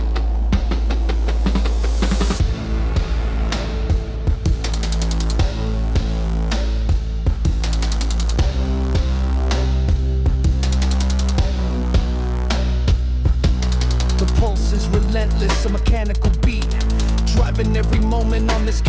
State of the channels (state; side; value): identical; both; correlation 1.00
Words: Relentless, a mechanical beat, driving every moment on this